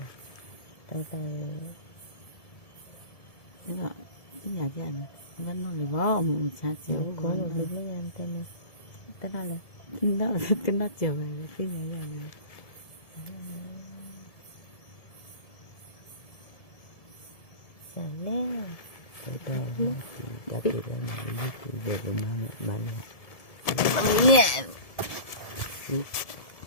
nhà chị anh vẫn nói là bó ông cha chiều có một lúc mấy anh tên này tên nào là nó chiều về cái nhà chị anh Sài lé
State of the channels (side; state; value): right; late; 1.7 ms